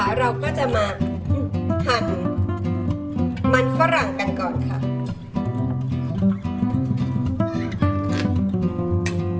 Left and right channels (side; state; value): both; identical; correlation 1.00